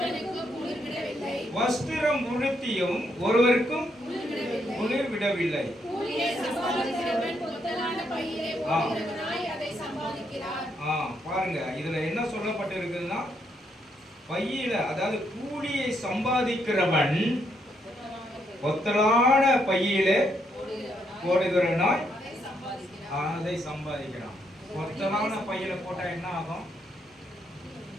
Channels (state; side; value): normal; both; correlation 0.76